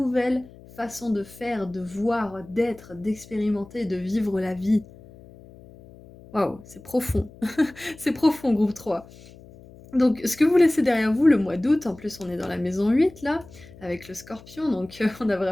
façons de faire, de voir, d'être, d'expérimenter, de vivre la vie. Waouh, c'est profond. C'est profond, groupe 3. Donc ce que vous laissez derrière vous le mois d'août, en plus on est dans la maison 8 là, avec le scorpion, donc on a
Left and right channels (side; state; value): left; noise; hum, 21 dB below the sound